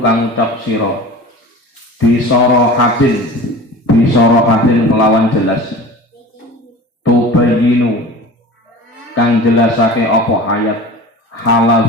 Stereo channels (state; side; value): normal; both; correlation 0.37